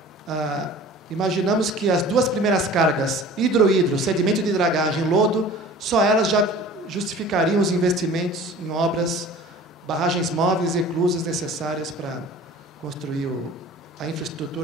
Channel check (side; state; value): both; normal; correlation 0.44